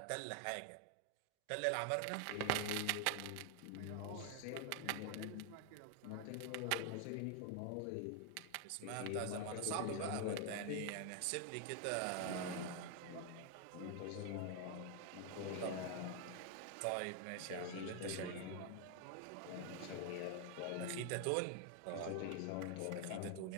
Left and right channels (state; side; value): different; both; correlation 0.00